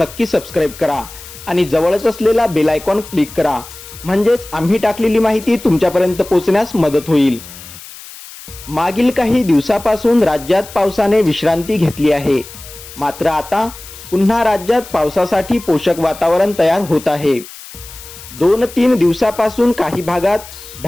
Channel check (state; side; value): noise; left; hiss, 16 dB below the sound